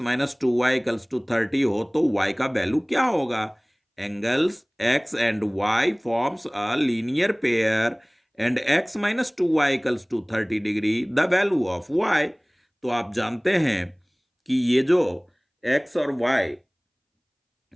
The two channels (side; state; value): both; identical; correlation 1.00